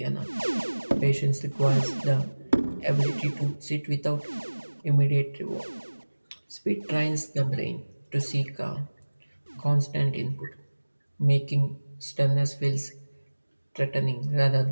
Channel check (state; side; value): inverted; both; correlation -1.00